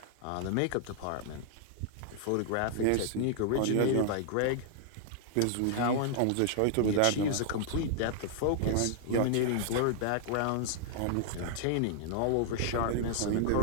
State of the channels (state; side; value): different; both; correlation 0.00